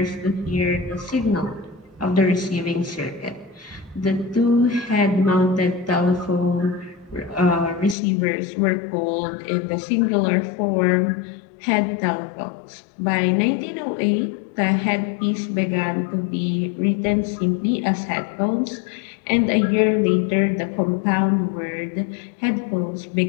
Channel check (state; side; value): drops out; right; at 8.0 s